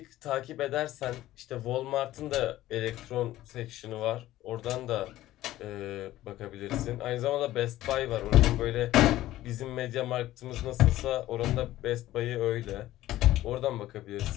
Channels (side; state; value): right; quieter; 15.0 dB